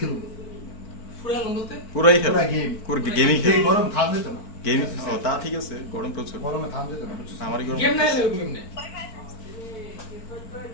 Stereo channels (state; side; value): late; right; 4.5 ms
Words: ফুরা বলতে পুরাই খেল পুরা গেম পুরো গেমই খেল গরম থাম যেত না গেম ও তা ঠিক আছে গরম প্রচুর গরমে থাম যেত না আমারই গরম গেম নাই এরকম গেম নাই